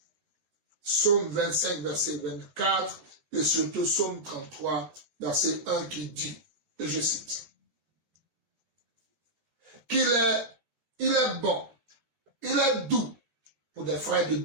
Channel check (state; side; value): late; left; 14 ms